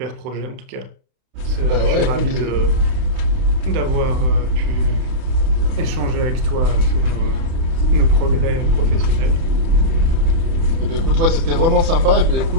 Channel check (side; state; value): left; late; 30 ms